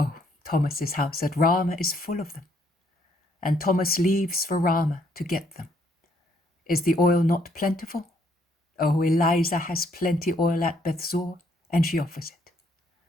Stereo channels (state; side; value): normal; both; correlation 0.68